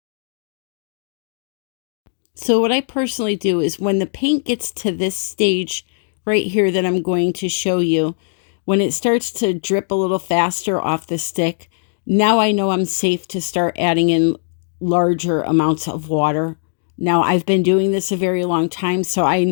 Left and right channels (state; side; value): silent; right; digital silence